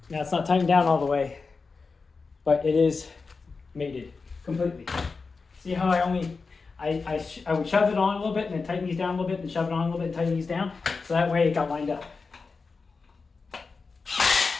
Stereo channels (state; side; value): quieter; right; 4.5 dB